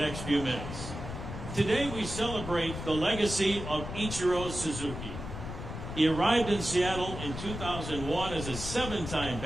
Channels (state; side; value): noise; left; rumble, 8 dB below the sound